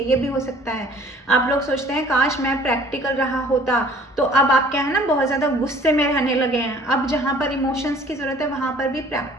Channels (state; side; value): normal; both; correlation 0.52